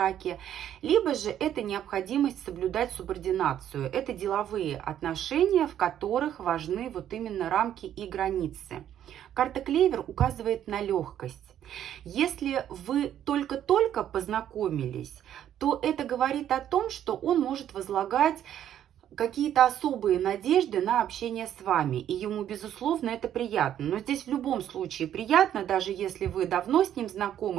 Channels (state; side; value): quieter; left; 10.7 dB